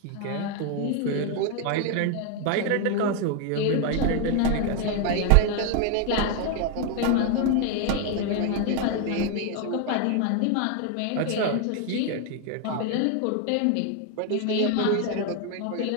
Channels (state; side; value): different; both; correlation 0.01